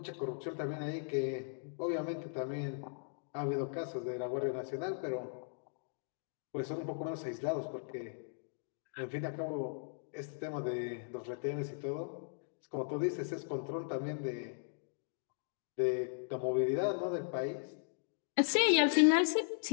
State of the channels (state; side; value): silent; right; digital silence